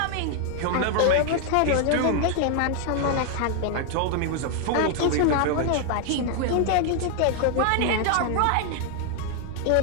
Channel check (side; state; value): both; different; correlation 0.00